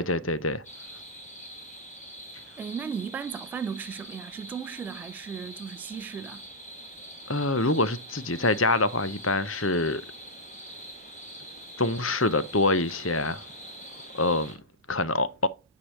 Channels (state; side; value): normal; both; correlation -0.11